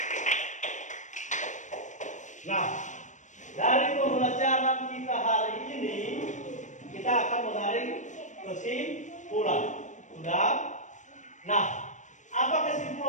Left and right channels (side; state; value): right; late; 0.35 ms